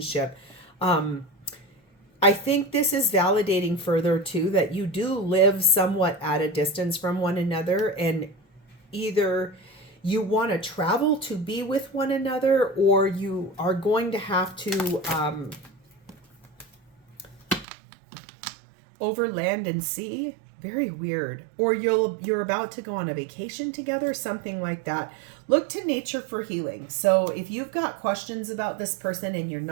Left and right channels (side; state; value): left; drops out; at 17.7 s